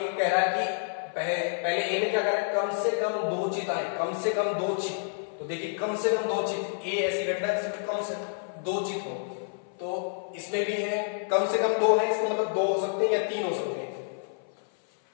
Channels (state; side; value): silent; right; 56 dB below the other